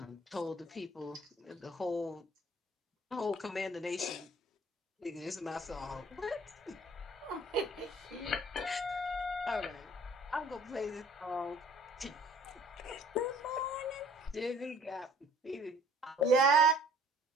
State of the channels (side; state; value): both; normal; correlation 0.54